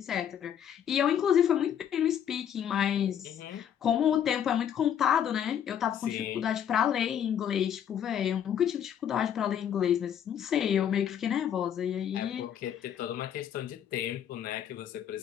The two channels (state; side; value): quieter; right; 9.2 dB